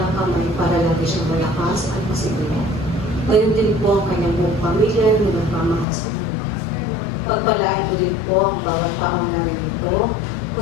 kamay para lagi siyang malakas at masiguro. Gayon din po ang kanyang buong pamilya na nagmamahal sa kanya. Pagpalain mo din po ang bawat taong narinito,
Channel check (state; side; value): drops out; right; at 5.9 s